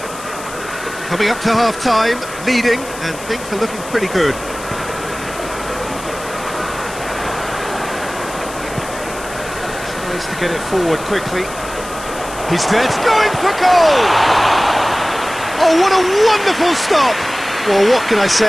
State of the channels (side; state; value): left; noise; hiss, 14 dB below the sound